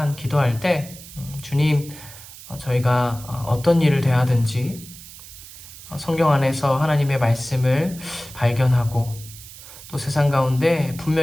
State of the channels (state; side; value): noise; right; hiss, 16 dB below the sound